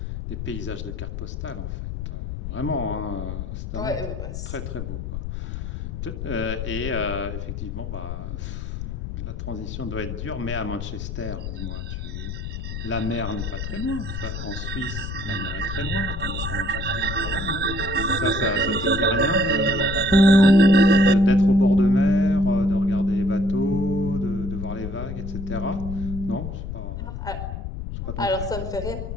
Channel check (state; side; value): noise; left; rumble, 6 dB below the sound